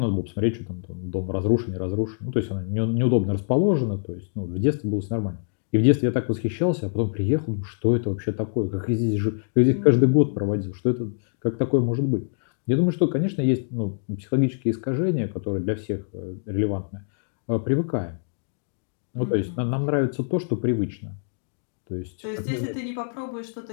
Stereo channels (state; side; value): silent; right; digital silence